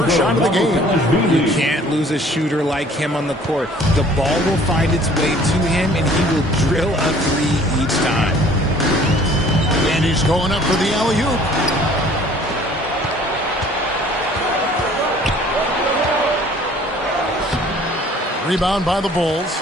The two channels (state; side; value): normal; both; correlation 0.54